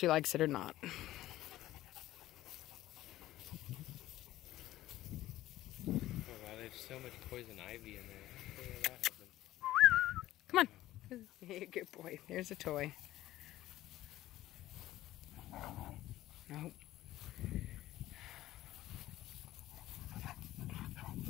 likes it or not. Oh wow, there's so much poison ivy in there. How did that happen? Come on. Hey, good boy. There's a toy. Nope.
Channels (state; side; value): quieter; right; 15.1 dB